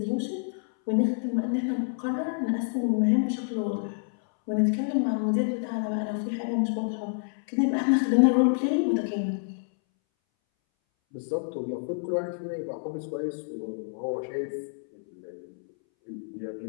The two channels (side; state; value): right; silent; 59 dB below the other